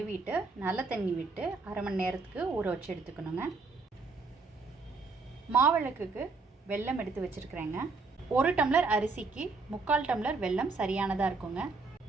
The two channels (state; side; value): quieter; left; 4.0 dB